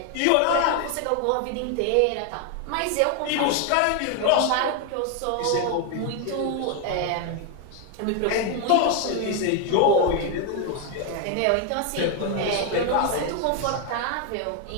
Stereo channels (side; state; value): both; different; correlation 0.01